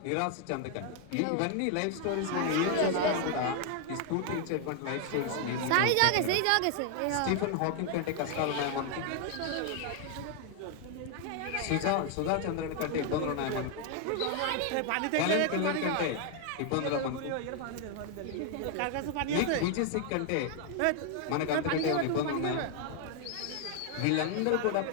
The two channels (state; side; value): different; both; correlation 0.00